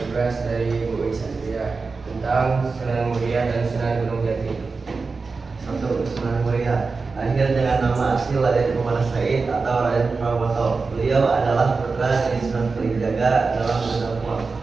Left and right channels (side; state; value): left; quieter; 4.3 dB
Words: dari Bu Isatria tentang Sunan Muria dan Sunan Gunung Jati. 1. Sunan Muria lahir dengan nama asli Raden Umar Said atau Raden Pramoto. Beliau adalah putra dari Sunan Kalijaga dalam berdakwah.